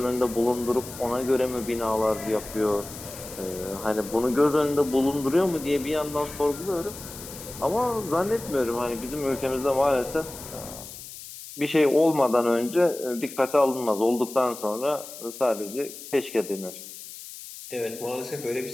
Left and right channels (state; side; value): noise; left; hiss, 13 dB below the sound